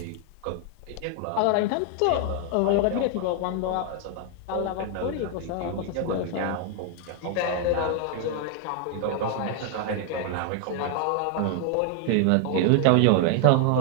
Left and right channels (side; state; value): both; different; correlation 0.00